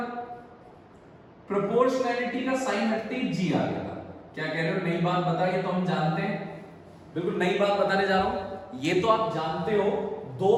प्रोपोर्शनैलिटी का साइन हटते ही जी आ गया था। क्या कह रहे हो, नई बात बता, ये तो हम जानते हैं, बिल्कुल नई बात बताने जा रहा हूं। ये तो आप जानते हो, दो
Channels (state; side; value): identical; both; correlation 1.00